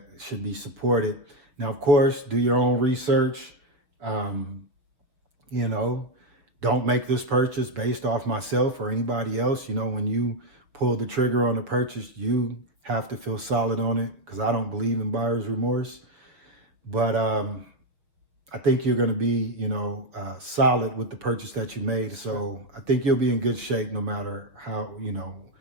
should be supported. Now, of course, do your own research. You know, don't make this purchase based off myself or anybody else. You know, when you pull the trigger on a purchase, you have to feel solid on it, because I don't believe in buyer's remorse. But I think you're going to be, you know, solid with the purchase that you made. So I think you'll be in good shape no matter how, you know,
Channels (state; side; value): late; left; 6.3 ms